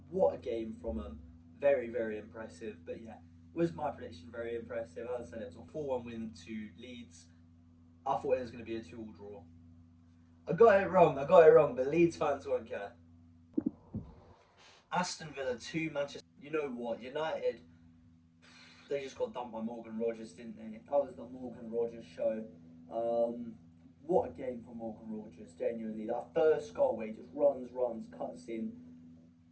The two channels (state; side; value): identical; both; correlation 1.00